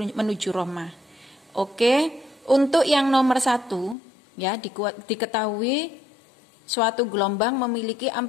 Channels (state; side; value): drops out; right; at 4.0 s